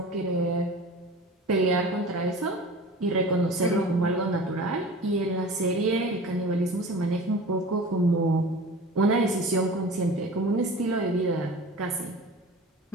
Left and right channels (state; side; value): normal; both; correlation 0.38